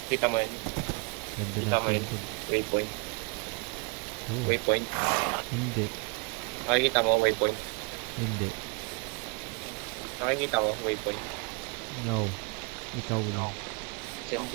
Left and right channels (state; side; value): quieter; left; 33.3 dB